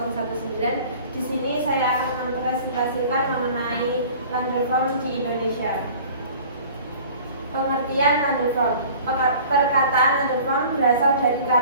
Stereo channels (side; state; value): both; inverted; correlation -0.46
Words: Di sini saya akan mempresentasikan mengenai land reform di Indonesia. Pengertian land reform. Perkataan land reform berasal dari